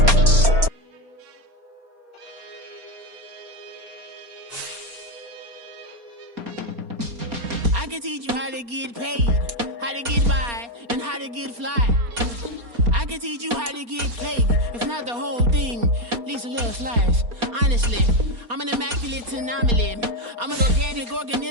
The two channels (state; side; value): late; left; 4.3 ms